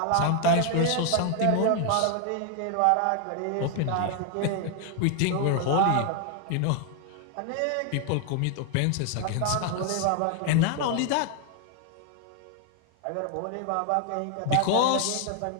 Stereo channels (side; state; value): both; different; correlation 0.00